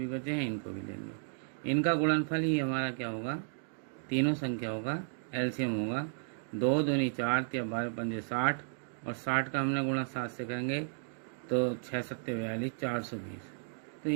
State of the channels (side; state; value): left; silent; digital silence